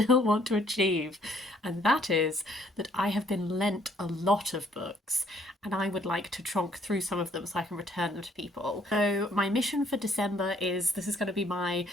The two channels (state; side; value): normal; both; correlation 0.64